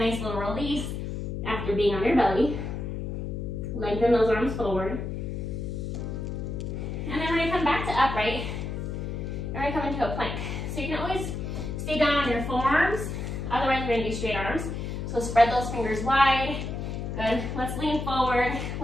little release after being on your belly. Lengthen those arms forward. And then we're gonna come back to upright. And we're gonna come into a plank. So you can always stay down on your forearms. Otherwise, we're gonna do straight arms. So spread those fingers wide. Good. Let's lean forward,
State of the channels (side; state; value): left; noise; hum, 4 dB below the sound